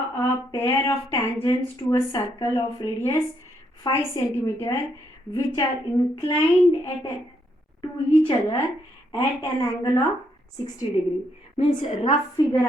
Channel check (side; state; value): both; normal; correlation 0.75